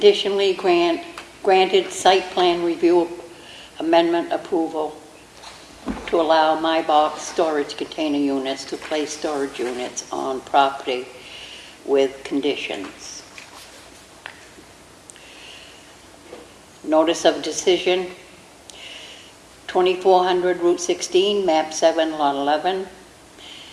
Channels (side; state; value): both; identical; correlation 1.00